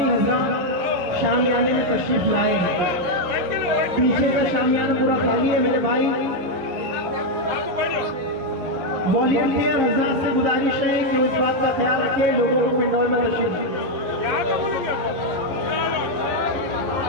حضرات شامیانے میں تشریف لائے ہیں، پیچھے کا شامیانہ پورا خالی ہے میرے بھائی۔ والنٹیئر حضرات سے گزارش ہے کہ اس بات کا خیال رکھیں لوگوں کو پنڈول میں تشریف لائیں۔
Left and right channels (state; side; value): late; left; 11 ms